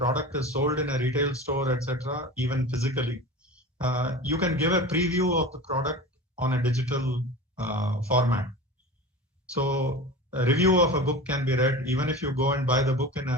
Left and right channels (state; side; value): normal; both; correlation 0.33